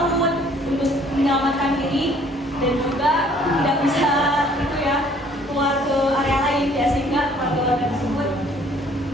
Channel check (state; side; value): normal; both; correlation 0.58